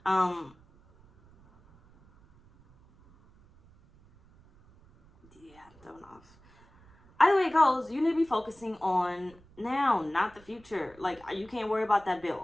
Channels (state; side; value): noise; right; rumble, 27 dB below the sound